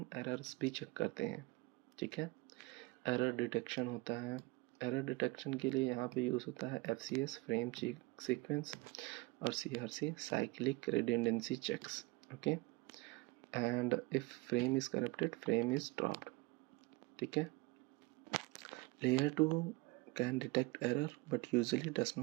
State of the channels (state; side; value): quieter; left; 23.4 dB